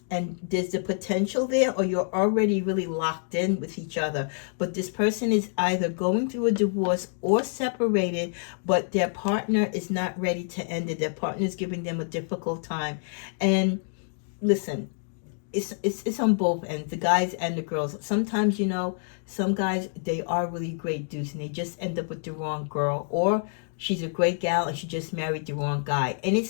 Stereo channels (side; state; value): right; silent; digital silence